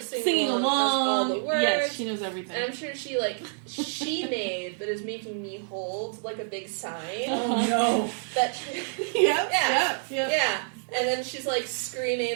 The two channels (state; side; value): silent; left; digital silence